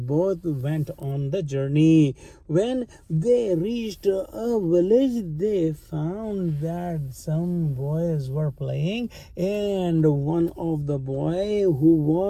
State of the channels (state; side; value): identical; both; correlation 1.00